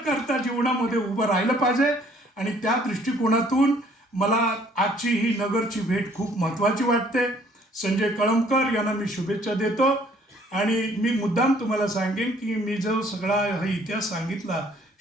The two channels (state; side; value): normal; both; correlation 0.60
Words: करता जीवनामध्ये उभं राहिलं पाहिजे आणि त्या दृष्टिकोनातून मला आजची ही नगरची भेट खूप महत्त्वाची वाटते. संजय कळमकर यांना मी शुभेच्छा देतो आणि मी मुद्दाम तुम्हाला सांगेन की मी जो सगळा हा इतिहास सांगितला